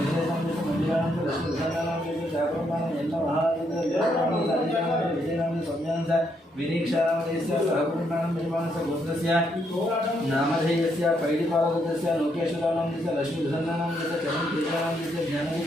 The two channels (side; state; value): both; normal; correlation 0.75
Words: नामधेयस्य मंदिरा नामधेयस्य लक्ष्मी सुधारा नामधेयस्य साकुरमान यल्ल महाराज विजय नामधेयस्य संज्ञानस्य विनीक्षा नामधेयस्य साकुरमान निर्माणस्य गोत्रस्य नामधेयस्य पैडिपाल गोत्रस्य लोकेश्वर नामधेयस्य लक्ष्मी सुधारा नामधेयस्य चरण तेजा नामधेयस्य ज्ञानरूप